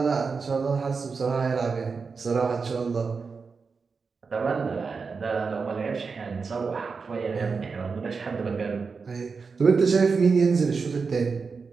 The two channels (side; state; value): left; quieter; 5.0 dB